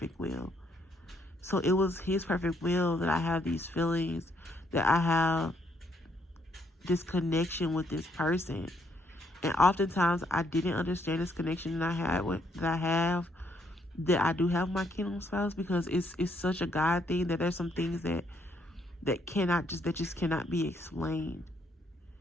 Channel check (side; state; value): both; normal; correlation 0.72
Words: will. So it was His perfect will that I have these feelings, that I have this connection with this person. And oftentimes I didn't understand this connection that I do have my kingdom spouse, because it's such a God thing that there's some things that just cannot be explained.